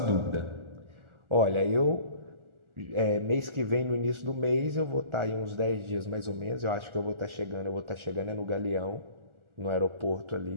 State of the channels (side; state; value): left; late; 1.4 ms